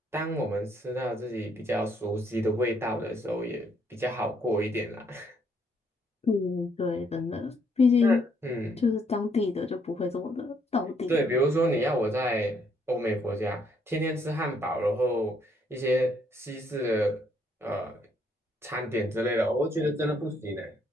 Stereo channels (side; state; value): both; normal; correlation 0.70